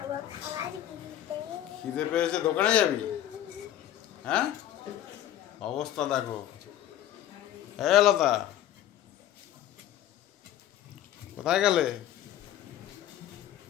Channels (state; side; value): quieter; right; 12.1 dB